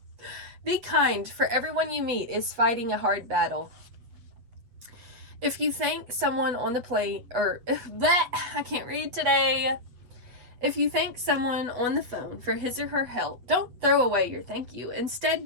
Be kind, for everyone you meet is fighting a hard battle. If you thank someone on the plane, I can't read today. If you thank someone on the phone for his or her help, don't throw away your thank you.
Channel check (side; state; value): left; late; 8.2 ms